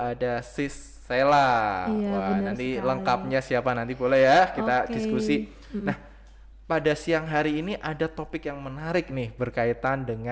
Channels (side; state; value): both; identical; correlation 1.00